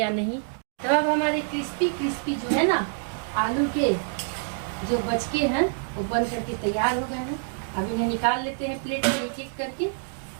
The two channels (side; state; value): left; silent; digital silence